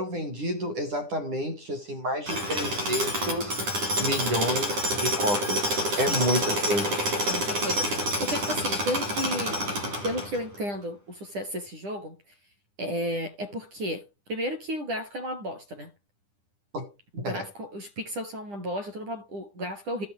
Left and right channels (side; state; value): left; late; 10 ms